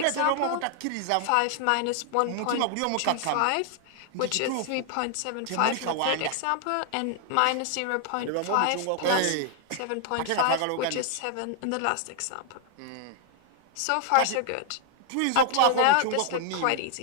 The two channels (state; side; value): different; both; correlation 0.00